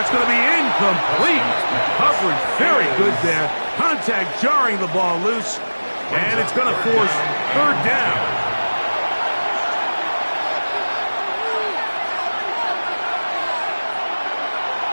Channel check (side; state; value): both; inverted; correlation -1.00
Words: going to be incomplete. Coverage very good there. Contact jarring the ball loose. And it's going to force third down.